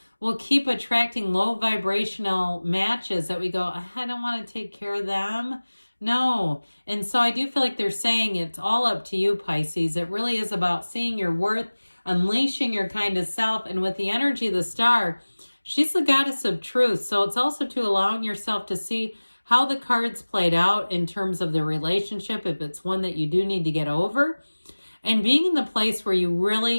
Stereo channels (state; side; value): inverted; both; correlation -1.00